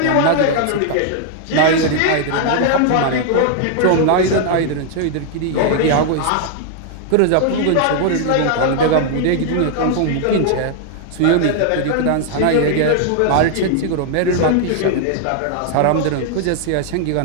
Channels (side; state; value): both; different; correlation 0.00